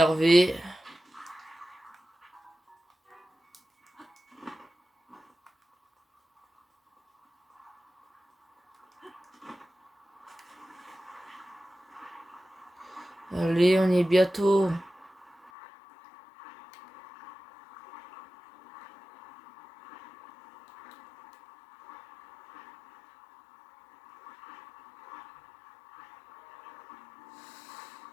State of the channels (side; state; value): right; drops out; at 15.5 s